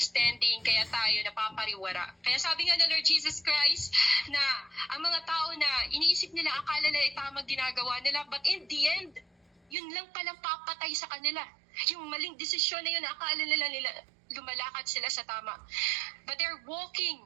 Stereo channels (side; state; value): left; drops out; at 9.8 s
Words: kaya tayo napapariwara. Kaya sabi nga ng Lord Jesus Christ na ang mga tao na iniisip nila, akala nila tamang ginagawa nila, but in the end, yun lang palang papatay sa kanila. Yung maling desisyon na yun, akala nila lumalakad sila sa tama. But they're walking,